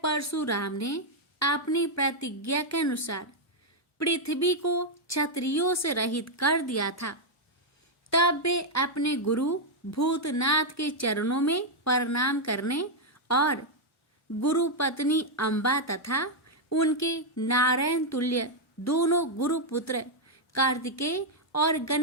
परशुराम ने अपनी प्रतिज्ञा के अनुसार पृथ्वी को क्षत्रियों से रहित कर दिया था। तब वे अपने गुरु भूतनाथ के चरणों में प्रणाम करने और गुरु पत्नी अम्बा तथा उनके नारायण तुल्य दोनों गुरुपुत्र कार्तिकेय और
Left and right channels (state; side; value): normal; both; correlation -0.01